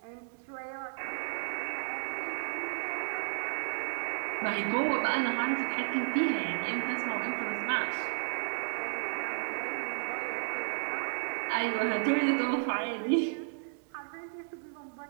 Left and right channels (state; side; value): silent; left; digital silence